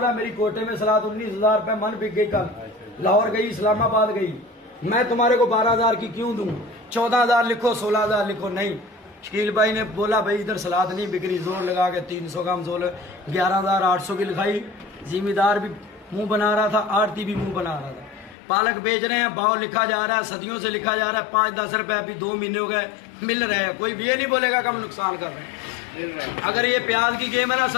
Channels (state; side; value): drops out; right; at 18.4 s